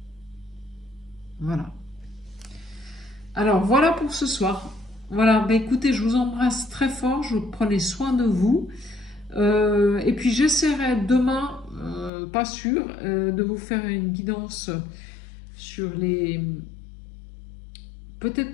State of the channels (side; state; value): right; drops out; at 12.1 s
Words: Voilà. Alors, voilà pour ce soir. Voilà, bah, écoutez, je vous embrasse très fort, je vous prenez soin de vous. Et puis, j'essaierai demain, pas sûr, de vous faire une guidance sur les... Peut-être